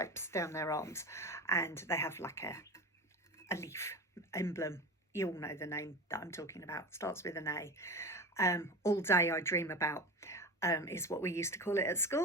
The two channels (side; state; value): both; normal; correlation 0.29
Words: down their arms, and they have like a leaf emblem. You all know the name that I'm talking about. Starts with an A. All Day I Dream About is what we used to call it at